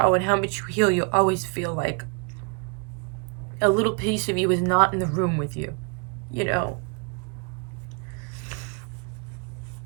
and how much you heal, you always feel like a little piece of you is not in the room with you, you know?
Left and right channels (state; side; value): quieter; left; 34.8 dB